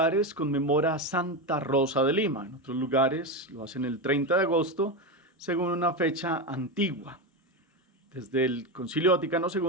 conmemora a Santa Rosa de Lima. En otros lugares lo hacen el 30 de agosto, según una fecha antigua. Desde el Concilio Vaticano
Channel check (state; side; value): normal; both; correlation 0.15